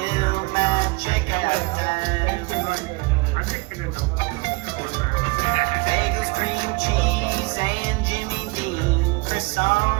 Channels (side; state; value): left; quieter; 26.8 dB